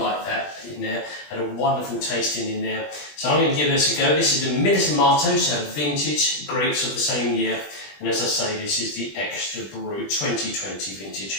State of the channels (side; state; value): right; late; 20 ms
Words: that in there. Had a wonderful tasting in there. So I'm going to give this a go. This is the Milismato, so vintage grapes of the same year. And as I say, this is the Extra Brut 2020